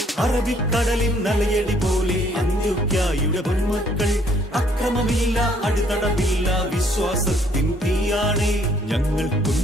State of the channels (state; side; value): normal; both; correlation 0.64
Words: അറബിക്കടലിൻ നലയടി പോലെ അന്ത്യോക്യായുടെ പൊന്മക്കൾ അക്രമമില്ല, അടിതടവില്ല, വിശ്വാസത്തിൻ തീയാണ്. ഞങ്ങൾ